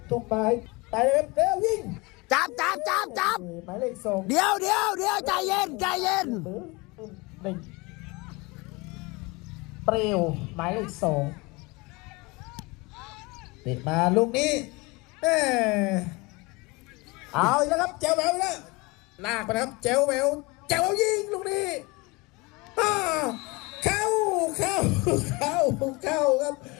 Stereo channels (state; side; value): quieter; right; 25.2 dB